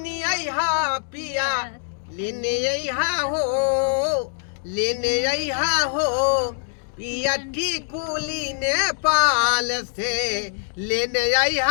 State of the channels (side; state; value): right; silent; digital silence